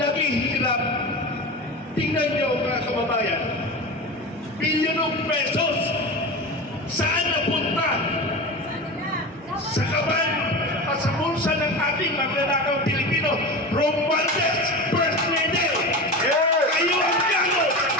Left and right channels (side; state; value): both; normal; correlation 0.27